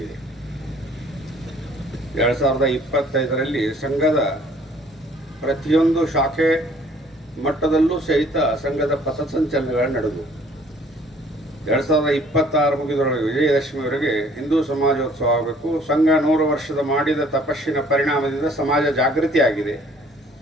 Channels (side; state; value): both; normal; correlation 0.57